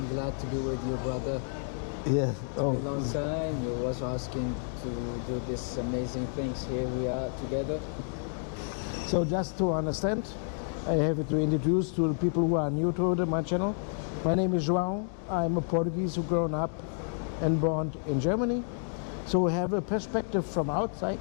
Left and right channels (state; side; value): silent; right; 58 dB below the other